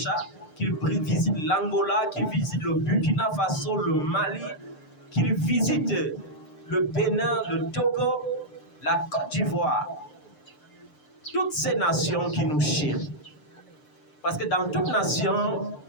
qu'il visite l'Angola, qu'il visite le Burkina Faso, le Mali, qu'il visite le Bénin, le Togo, la Côte d'Ivoire. Toutes ces nations qui nous chient. Parce que dans toute nation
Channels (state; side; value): late; right; 6.7 ms